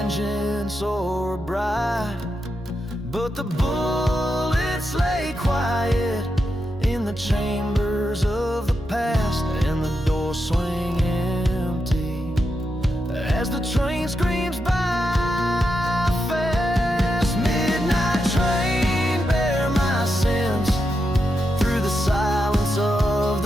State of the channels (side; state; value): both; normal; correlation 0.86